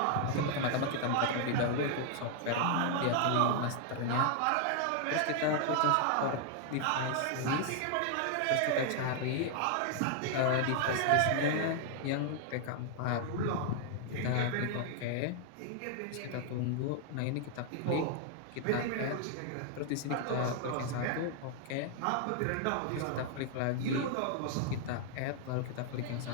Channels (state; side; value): different; both; correlation 0.00